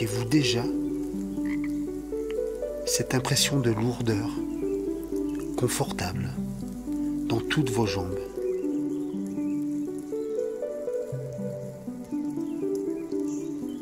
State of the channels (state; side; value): identical; both; correlation 1.00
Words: déjà cette impression de lourdeur confortable dans toutes vos jambes.